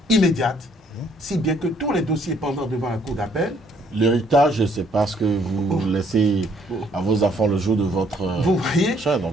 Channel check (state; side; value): normal; both; correlation 0.66